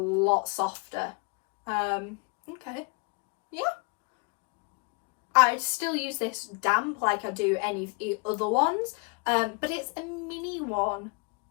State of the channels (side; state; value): right; quieter; 31.2 dB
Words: softer. Okay, yeah. I'd still use this damp like I do any of the other ones, but it's a mini one.